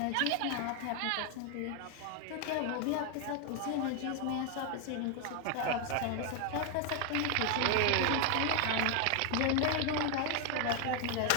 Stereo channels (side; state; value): both; different; correlation 0.00